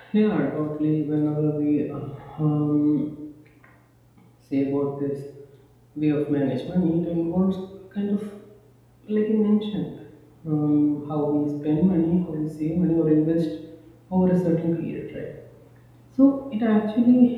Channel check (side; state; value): both; identical; correlation 1.00